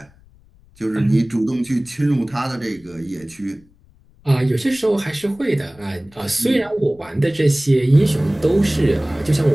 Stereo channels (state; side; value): noise; left; rumble, 29 dB below the sound